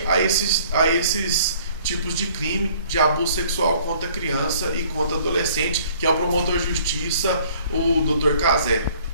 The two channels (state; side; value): inverted; both; correlation -0.56